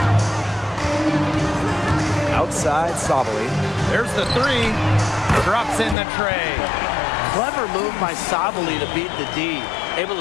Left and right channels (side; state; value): right; drops out; at 6.0 s